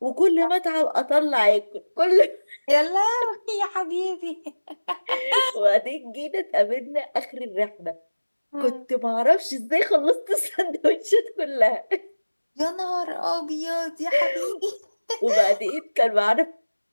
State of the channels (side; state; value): both; inverted; correlation -1.00